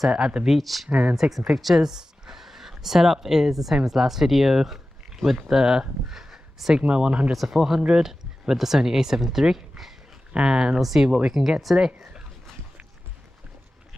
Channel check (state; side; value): normal; both; correlation 0.95